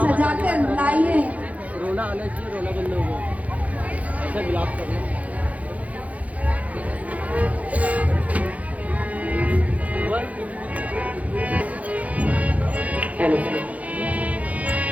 लाइए। रोना आना चाहिए, रोना बंद हो गया, ऐसा विलाप करना।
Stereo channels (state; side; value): late; left; 0.069 ms